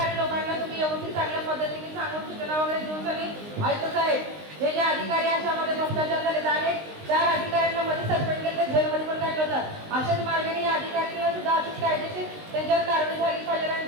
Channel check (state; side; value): late; left; 19 ms